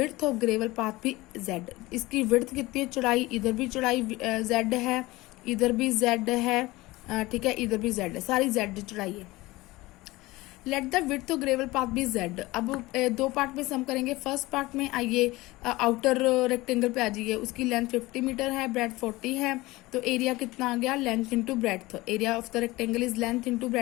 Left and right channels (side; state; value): right; quieter; 20.1 dB